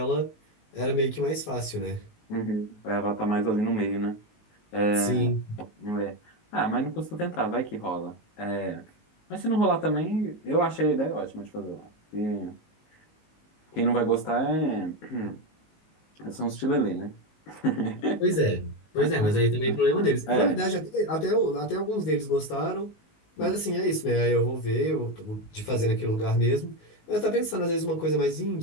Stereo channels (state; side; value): late; right; 19 ms